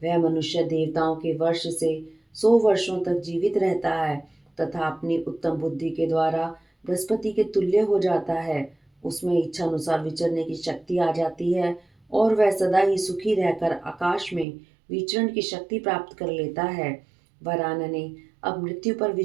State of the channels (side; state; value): left; drops out; at 14.5 s